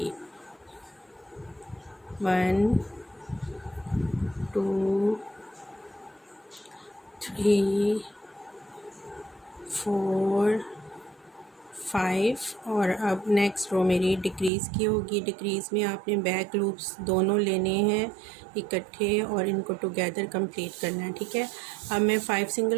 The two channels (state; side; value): drops out; left; at 14.5 s